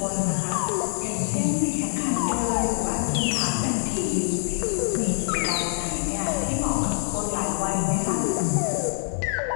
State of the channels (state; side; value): silent; right; 62 dB below the other